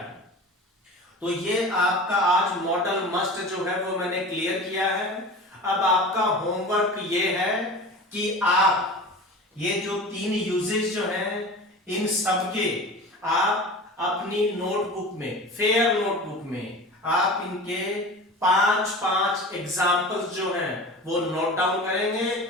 तो ये आपका आज मॉडल मस्ट जो है वो मैंने क्लियर किया है। अब आपका होमवर्क ये है कि आप ये जो 3 यूजेस जो हैं इन सबके आप अपनी नोटबुक में, फेयर नोटबुक में आप इनके 5 एग्जाम्पल्स जो हैं वो नोट डाउन करेंगे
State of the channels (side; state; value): both; normal; correlation 0.35